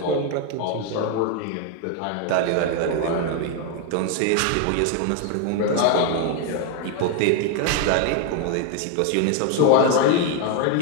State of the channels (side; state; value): both; different; correlation 0.01